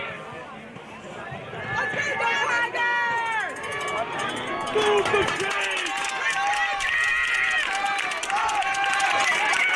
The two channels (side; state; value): both; identical; correlation 1.00